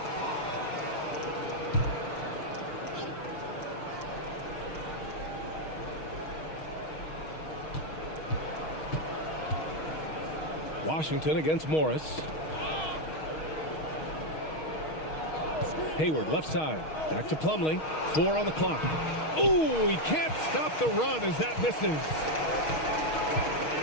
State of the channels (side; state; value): right; late; 6.4 ms